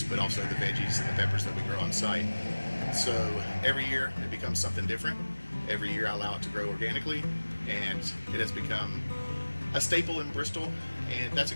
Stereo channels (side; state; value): both; inverted; correlation -1.00